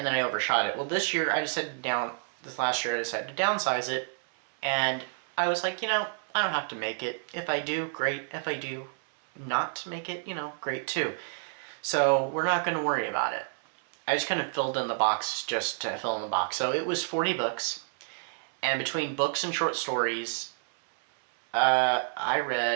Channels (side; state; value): left; silent; 58 dB below the other